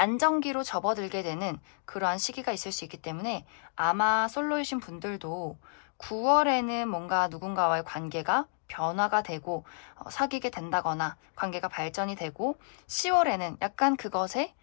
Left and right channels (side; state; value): right; silent; digital silence